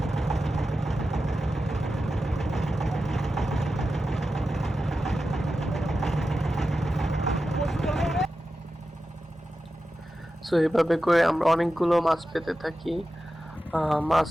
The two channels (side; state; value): both; normal; correlation 0.92